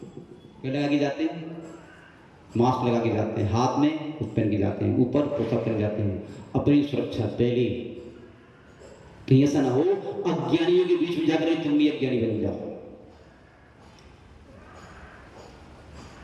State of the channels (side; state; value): both; identical; correlation 1.00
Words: क्या लगा के जाते हैं? मास्क लगा के जाते हैं, हाथ में कुछ पहन के जाते हैं, ऊपर पोशाक पहन जाते हैं, अपनी सुरक्षा पहले। कहीं ऐसा ना हो अज्ञानियों के बीच में जाकर तुम भी अज्ञानी बन जाओ।